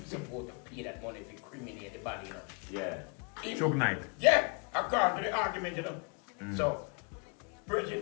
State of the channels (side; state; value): right; quieter; 35.3 dB